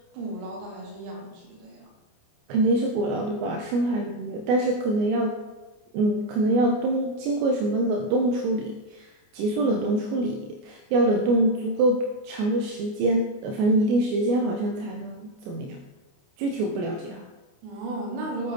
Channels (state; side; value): late; left; 29 ms